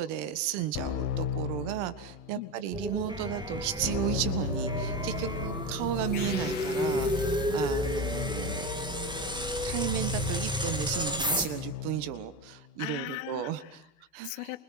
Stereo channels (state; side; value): normal; both; correlation 0.18